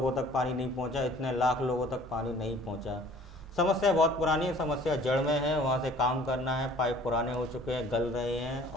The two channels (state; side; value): normal; both; correlation 0.51